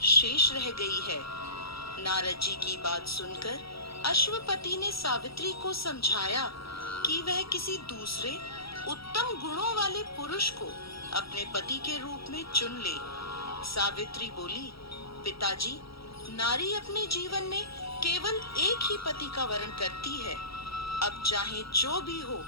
शेष रह गई है। नारद जी की बात सुनकर अश्वपति ने सावित्री को समझाया कि वह किसी दूसरे उत्तम गुणों वाले पुरुष को अपने पति के रूप में चुन ले। सावित्री बोली, पिताजी, नारी अपने जीवन में केवल एक ही पति का वर्ण करती है। अब चाहे जो भी हो,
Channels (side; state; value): right; late; 0.76 ms